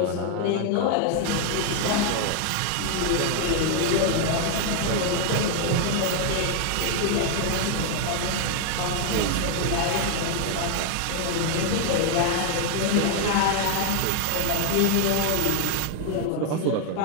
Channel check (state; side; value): different; both; correlation 0.00